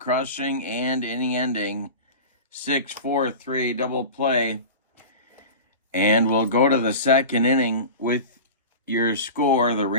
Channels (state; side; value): inverted; both; correlation -0.32